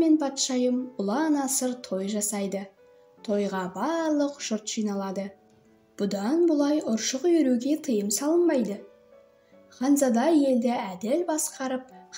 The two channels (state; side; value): identical; both; correlation 1.00